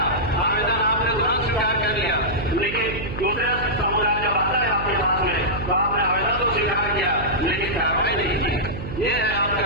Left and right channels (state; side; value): noise; right; hum, 8 dB below the sound